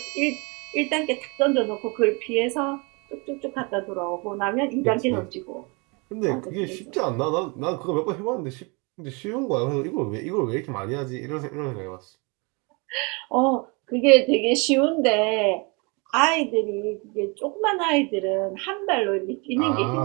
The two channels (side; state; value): left; quieter; 30.3 dB